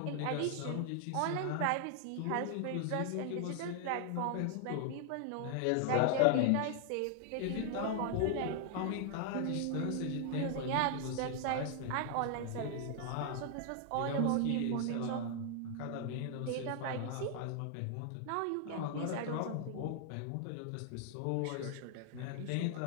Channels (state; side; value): different; both; correlation 0.00